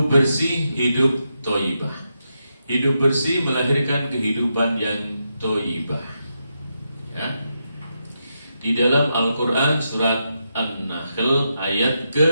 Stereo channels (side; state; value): both; inverted; correlation -0.84